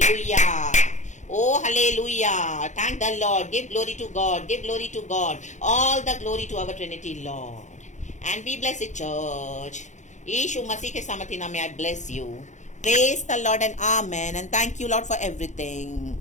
Oh hallelujah, thank the Lord, give glory to God, give glory to God, all the glory to our Trinity Lord, and be blessed church. यीशु मसीह के सामर्थ्य नाम में I bless you. Praise the Lord and Amen and thank you Lord for everything.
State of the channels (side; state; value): right; late; 0.35 ms